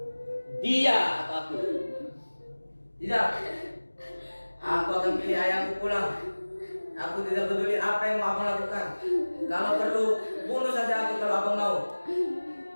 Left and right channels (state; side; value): inverted; both; correlation -1.00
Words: dia atau aku. Tidak. Aku akan pilih ayahku pulang. Aku tidak peduli apa yang mau abang lakukan. Kalau perlu, bunuh saja aku kalau abang mau.